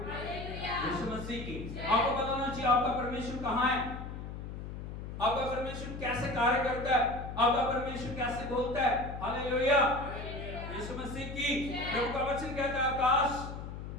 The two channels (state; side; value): noise; left; hum, 8 dB below the sound